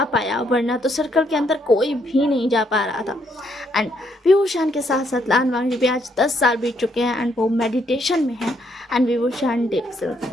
पाया, वरना तो सर्कल के अंदर कोई भी नहीं जा पा रहा था। एंड विभूषण के साथ साथ लान मांझी भी आज 10 साल बीत चुके हैं, एंड वो मेडिटेशन में है, एंड विभूषण डीप स्लीप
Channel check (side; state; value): both; normal; correlation 0.73